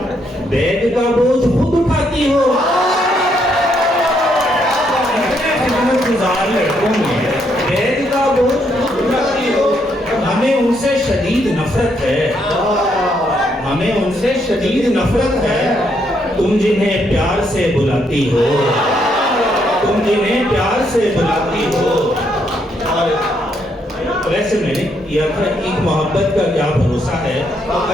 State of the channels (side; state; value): both; normal; correlation 0.74